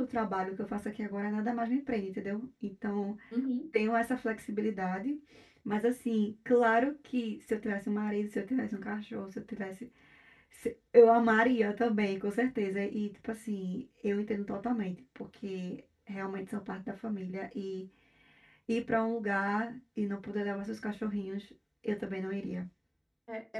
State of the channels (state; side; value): identical; both; correlation 1.00